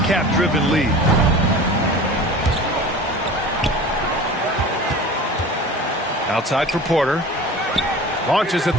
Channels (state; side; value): normal; both; correlation 0.38